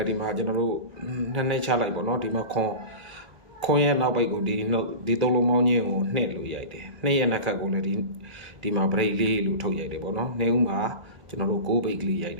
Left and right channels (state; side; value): late; left; 1.8 ms